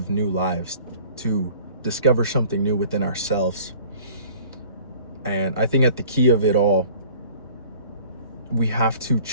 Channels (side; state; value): both; inverted; correlation -0.49